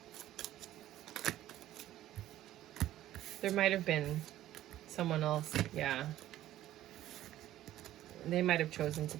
There might have been someone else, yeah. They might have chosen to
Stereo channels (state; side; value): quieter; left; 13.6 dB